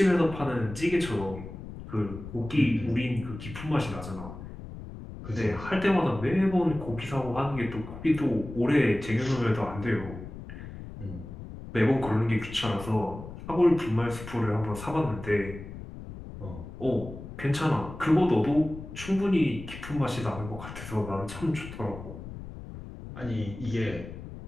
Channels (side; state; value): left; noise; rumble, 12 dB below the sound